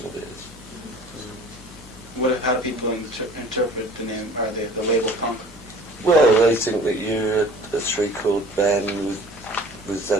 of it. How do people interpret the name, or the label punk? Well, they think that you're a three-chord band with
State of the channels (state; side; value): normal; both; correlation 0.47